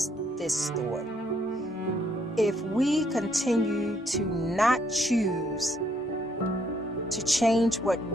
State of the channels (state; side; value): normal; both; correlation 0.70